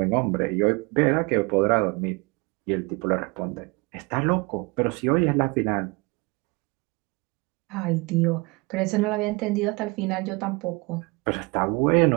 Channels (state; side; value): quieter; left; 27.0 dB